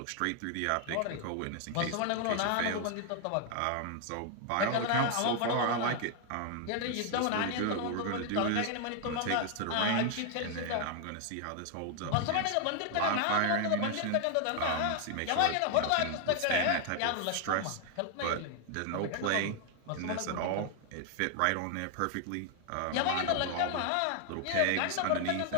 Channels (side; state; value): both; different; correlation 0.00